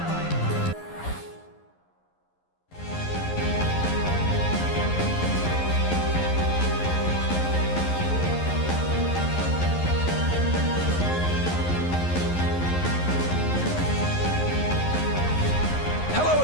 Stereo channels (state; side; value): late; right; 11 ms